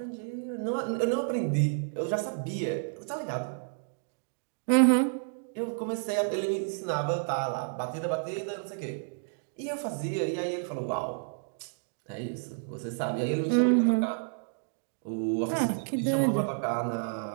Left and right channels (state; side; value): silent; left; digital silence